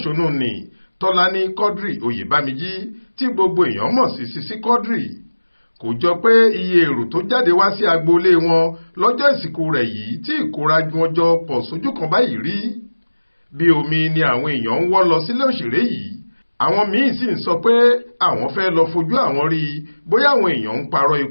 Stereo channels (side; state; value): both; inverted; correlation -1.00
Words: ni Tọ́lání Quadri Oyèbámijí tí gbogbo èèyàn mọ̀ sí Sisi Quadri. Kò jọ pé iye èrò tó jáde wá sí agboolé wọn lọ́jọ́ ìsìnkú rẹ̀ yìí tí ìkórajù wọn jọ pọ̀ sójú kan báyìí rí. Bí omi ni àwọn èèyàn ń wọ́ lọ sílé òṣèré yìí. Àwọn míín sì ń sọ pé àwọn fẹ́ lọ fojú àwọn rí bóyá àwọn èèyàn ń parọ́